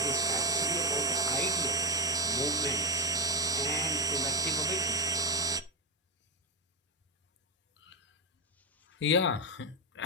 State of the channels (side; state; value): both; normal; correlation 0.04